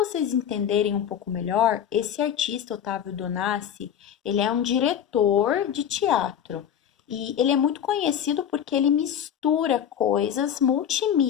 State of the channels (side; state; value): right; quieter; 9.2 dB